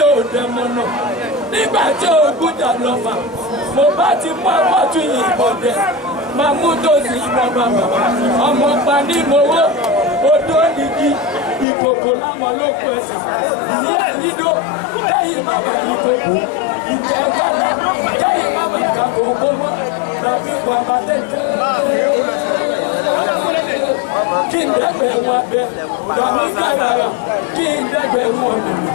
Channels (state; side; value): drops out; right; at 11.7 s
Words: ò dẹ̀mọ̀ náà. Nígbà tí ogún jà lọ́fà, mo bá ti mú àpọ̀tù yìnbọn dẹ̀. Máa mú tòsí ìbọn bàbà. Ọmọ pa ní mowó. Odó nìkí. Ìkòkò láwọn ló kù ẹsẹ̀. Ìyá ìyídó. Kẹ́yìn bàbá ìkòkò. Ìjẹ́ kálá. Kẹ́yìn bàbá ìkàkòkò mọ́. Tàbí bàbá tẹ̀tẹ̀. Kí n dẹ́gbẹ̀ wọn abẹ. Tàbí kàràrà. Kí n dẹ́gbẹ̀ wọn mẹ̀mẹ̀.